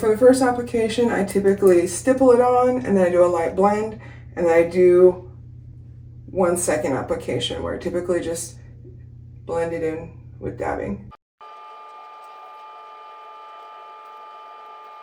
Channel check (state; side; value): identical; both; correlation 1.00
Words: the first application, I typically stipple it on, and then I do a light blend, and then I do 1 second application where I typically just blend it in with dabbing.